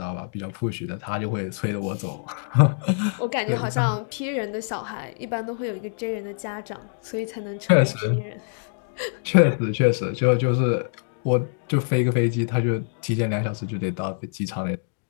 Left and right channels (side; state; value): right; silent; digital silence